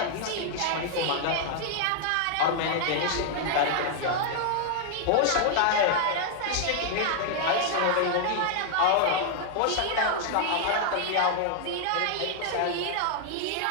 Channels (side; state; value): both; different; correlation 0.00